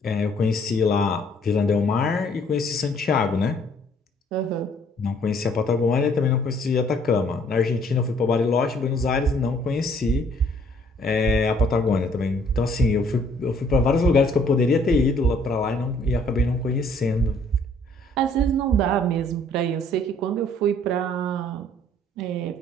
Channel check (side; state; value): both; normal; correlation 0.61